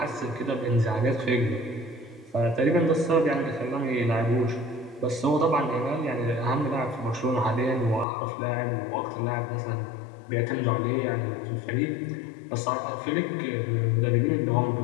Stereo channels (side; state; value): right; drops out; at 8.1 s